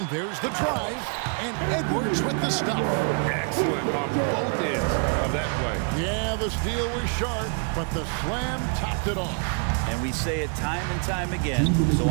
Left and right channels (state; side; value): quieter; left; 39.6 dB